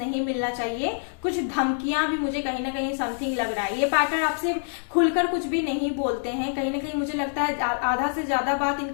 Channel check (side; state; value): right; silent; digital silence